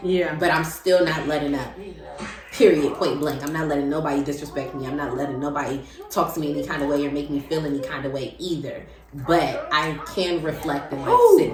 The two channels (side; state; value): both; identical; correlation 1.00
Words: Yeah. But I'm still not letting up. Period. Point blank. I'm not letting nobody disrespect me. I'm not letting nobody talk to me any kind of way or make me feel any kind of way either. But I can reflect and sit